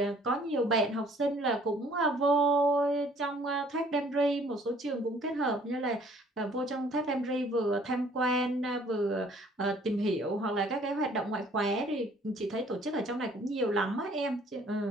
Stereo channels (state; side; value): normal; both; correlation 0.58